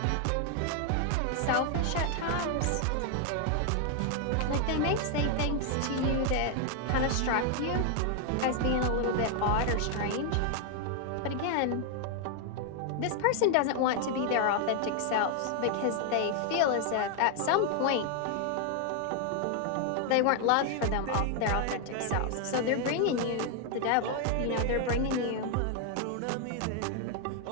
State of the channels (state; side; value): different; both; correlation 0.00